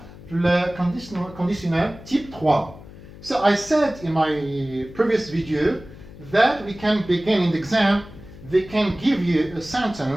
في ال conditional type 3. So I said in my previous video that we can begin in the exam. They can give you a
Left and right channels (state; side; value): noise; left; hum, 18 dB below the sound